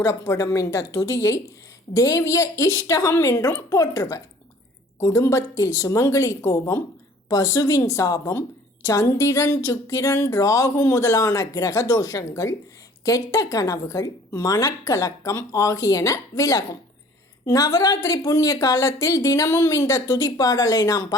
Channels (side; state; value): both; normal; correlation 0.52